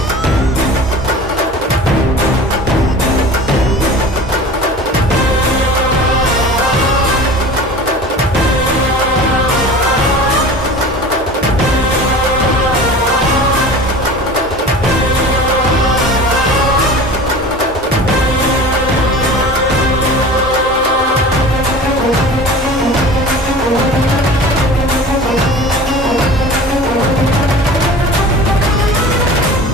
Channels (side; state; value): both; normal; correlation 0.39